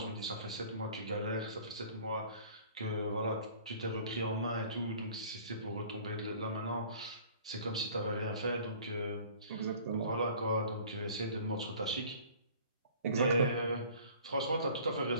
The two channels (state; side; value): inverted; both; correlation -0.49